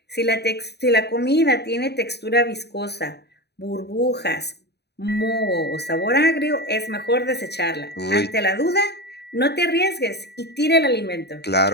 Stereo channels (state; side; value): late; right; 0.48 ms